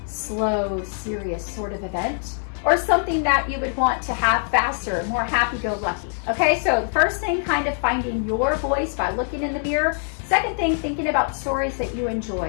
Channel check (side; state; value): right; silent; 60 dB below the other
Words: slow, serious sort of event, or something that you would want to have faster, more happy-go-lucky? Okay, so the first thing, kind of finding your voice by looking in the mirror. Second thing, thinking about stories that you